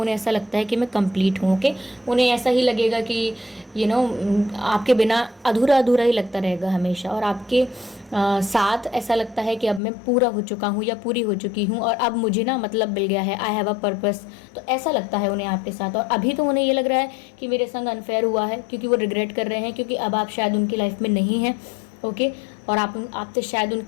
ऐसा लगता है कि मैं कंप्लीट हूँ, ओके। उन्हें ऐसा ही लगेगा कि आपके बिना अधूरा अधूरा ही लगता रहेगा हमेशा, और आपके साथ ऐसा लगता है कि अब मैं पूरा हो चुका हूँ या पूरी हो चुकी हूँ, और अब मुझे मतलब मिल गया है, आई हैव अ पर्पस। तो ऐसा लगता है उन्हें आपके साथ, और अभी तो उन्हें ये लग रहा है कि मेरे संग अनफेयर हुआ है, क्योंकि वो रिग्रेट कर रहे हैं, क्योंकि अब आप शायद उनकी लाइफ में नहीं हैं, ओके। और आपसे शायद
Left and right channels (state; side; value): drops out; right; at 9.8 s